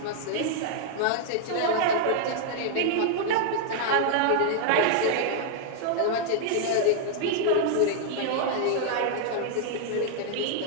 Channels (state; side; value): different; both; correlation -0.01